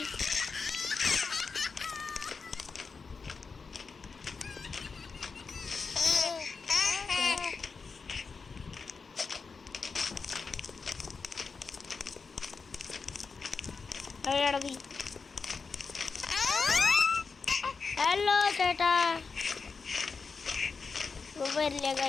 ഹലോ ചേട്ടാ. വരില്ല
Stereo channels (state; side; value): quieter; right; 4.9 dB